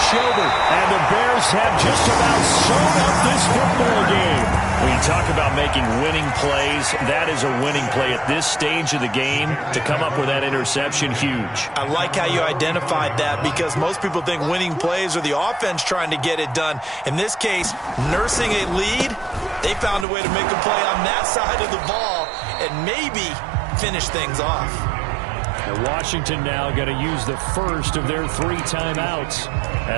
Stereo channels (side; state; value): left; drops out; at 20.1 s